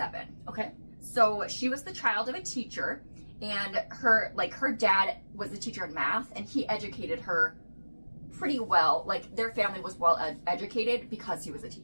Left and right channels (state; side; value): inverted; both; correlation -1.00